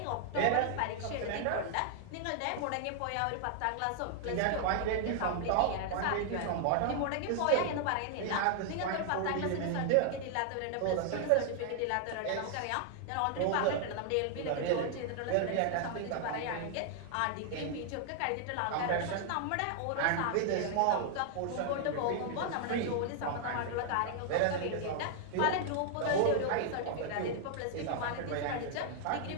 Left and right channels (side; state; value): both; different; correlation 0.00